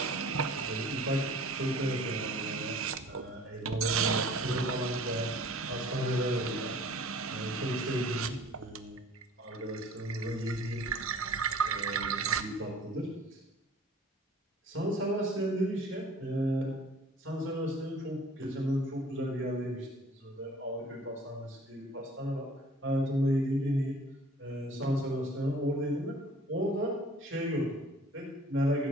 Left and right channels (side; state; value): both; normal; correlation 0.50